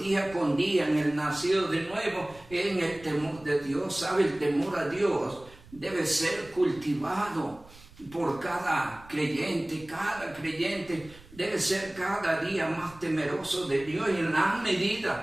con día en el nacido de nuevo, en el temor de Dios. ¿Sabe? El temor a Dios debe ser cultivado por cada creyente. Cada creyente debe ser cada día más temeroso de Dios, y en la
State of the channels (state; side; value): noise; right; rumble, 22 dB below the sound